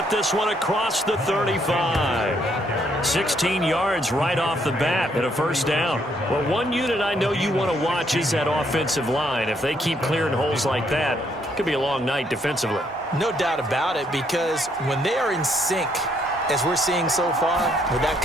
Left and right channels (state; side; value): normal; both; correlation 0.71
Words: this one across the 35. 16 yards right off the bat and a first down. Well, one unit I know you want to watch is that offensive line. If they keep clearing holes like that, it could be a long night defensively. No doubt about it, because when they are in sync, as we're seeing so far, when that